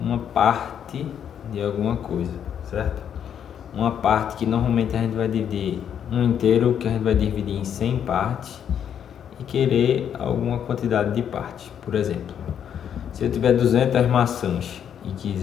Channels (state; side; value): quieter; right; 8.8 dB